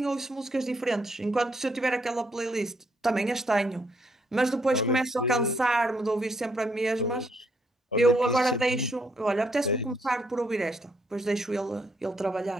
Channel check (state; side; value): normal; both; correlation 0.73